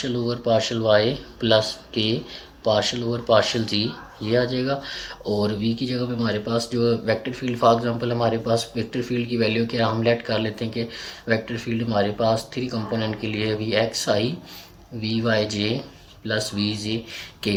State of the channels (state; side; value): identical; both; correlation 1.00